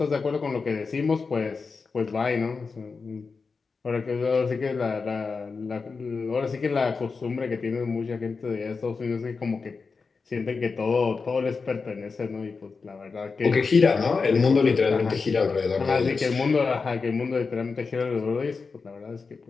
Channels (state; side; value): quieter; right; 4.7 dB